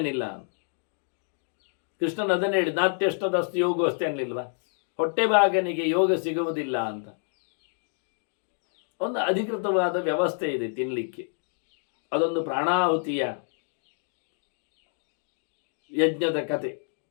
ಇಲ್ಲ. ಕೃಷ್ಣನ್ ಅದನ್ನೇ ಹೇಳಿ, ನಾತ್ಯಷ್ಟದಸ್ತು ಯೋಗ ಅಷ್ಟೇ ಅನ್ನಲಿಲ್ವಾ, ಹೊಟ್ಟೆ ಭಾಗನಿಗೆ ಯೋಗ ಸಿಗುವುದಿಲ್ಲ ಅಂತ. ಒಂದು ಅಧಿಕೃತವಾದ ವ್ಯವಸ್ಥೆ ಇದೆ ತಿನ್ನಲಿಕ್ಕೆ. ಅದೊಂದು ಪ್ರಾಣಾಹುತಿಯ ಯಜ್ಞದ ಕತೆ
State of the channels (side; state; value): right; silent; 59 dB below the other